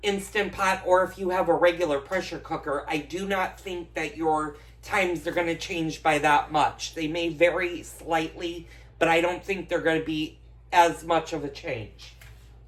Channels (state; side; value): identical; both; correlation 1.00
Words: Instant Pot or if you have a regular pressure cooker. I do not think that your times are going to change by that much. They may vary slightly, but I don't think they're going to be as much of a change.